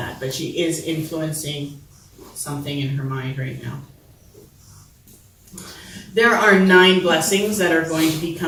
but she is influencing something in her mind right now. There are 9 blessings that are going to be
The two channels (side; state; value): both; identical; correlation 1.00